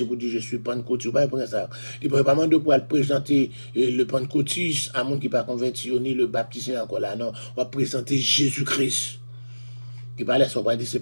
pour dire je suis pentecôtiste, pas pour ça. Il ne peut pas demander pour présenter le pentecôtiste à monde qui pas converti, ni le baptisé encore là, non. On va présenter Jésus-Christ. Il parle ça, on va dire c'est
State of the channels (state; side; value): inverted; both; correlation -1.00